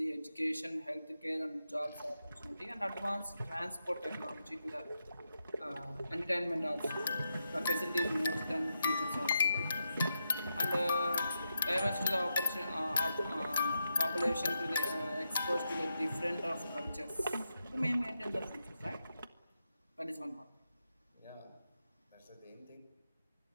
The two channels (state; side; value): inverted; both; correlation -0.86